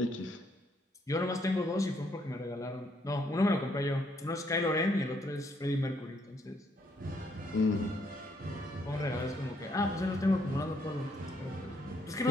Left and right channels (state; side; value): normal; both; correlation 0.71